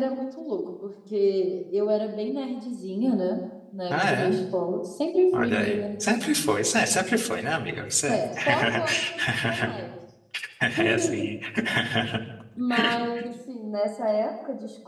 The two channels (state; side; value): identical; both; correlation 1.00